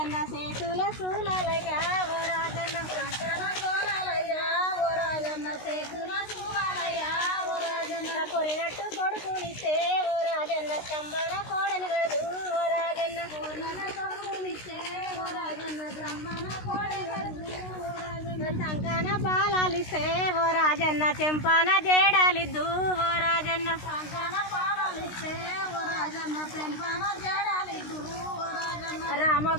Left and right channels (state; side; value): late; right; 16 ms